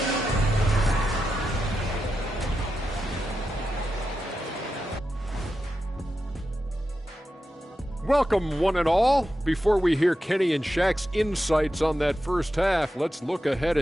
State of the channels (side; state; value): both; normal; correlation 0.89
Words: Welcome, one and all. Before we hear Kenny and Shaq's insights on that first half, let's look ahead